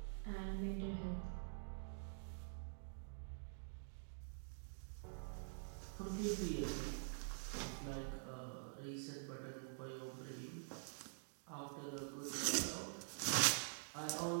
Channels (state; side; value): silent; left; digital silence